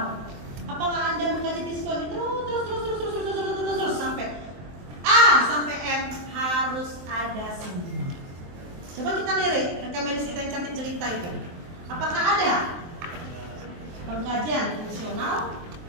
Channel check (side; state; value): left; late; 23 ms